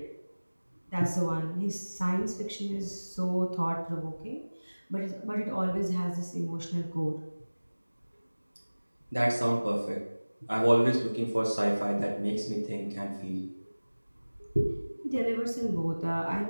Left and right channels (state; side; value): inverted; both; correlation -1.00